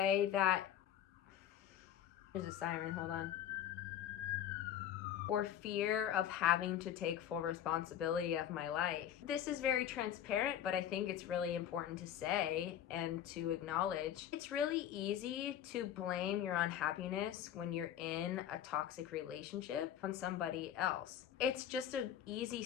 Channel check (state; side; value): quieter; right; 10.5 dB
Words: that, there's a siren, hold on. Or fear of having to take full responsibility of my life. This is very transparent, but I think it's really important to say and to acknowledge. It's really easy to blame your unhappiness when you're in a toxic relationship on somebody else. It's just an easy